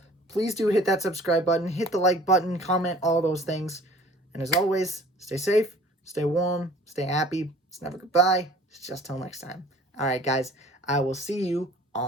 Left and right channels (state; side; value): normal; both; correlation 0.50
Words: please do hit that subscribe button, hit the like button, comment, all those things. And as always, stay safe, stay warm, stay happy. It's never goodbye. It's just till next time. All right, guys, I will see you